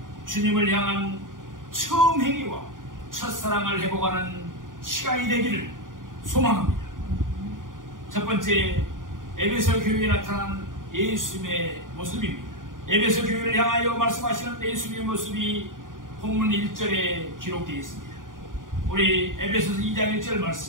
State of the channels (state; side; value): late; left; 0.89 ms